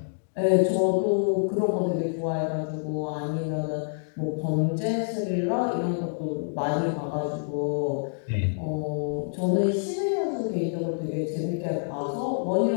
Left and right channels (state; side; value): silent; right; digital silence